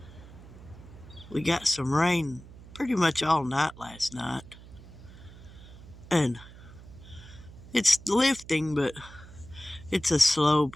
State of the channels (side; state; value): right; noise; hum, 18 dB below the sound